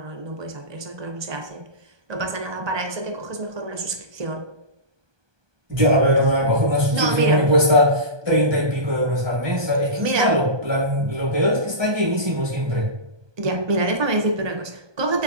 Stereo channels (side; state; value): left; late; 1.2 ms